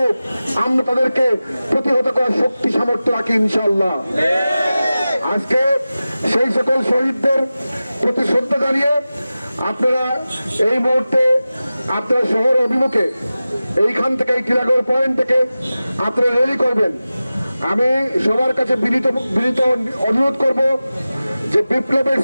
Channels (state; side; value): inverted; both; correlation -0.95